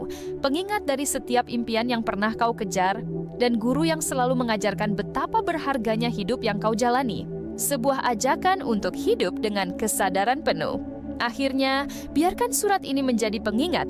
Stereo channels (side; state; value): both; identical; correlation 1.00